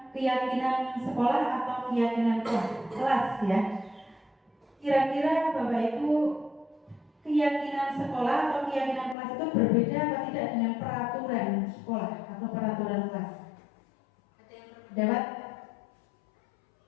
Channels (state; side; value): drops out; right; at 9.2 s